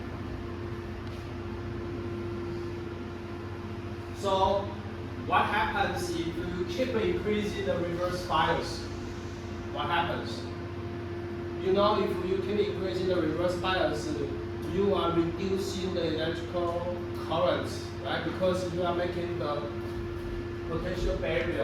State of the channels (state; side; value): identical; both; correlation 1.00